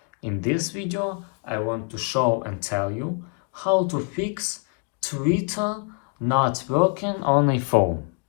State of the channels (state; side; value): quieter; right; 37.3 dB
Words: In this video I want to show and tell you how to fix Twitter not working on a phone.